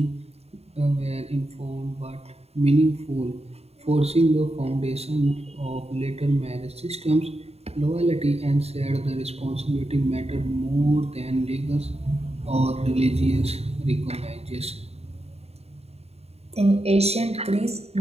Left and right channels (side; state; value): left; late; 0.30 ms